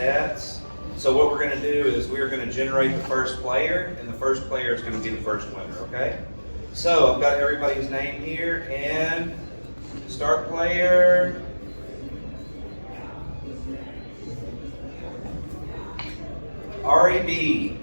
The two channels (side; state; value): both; inverted; correlation -1.00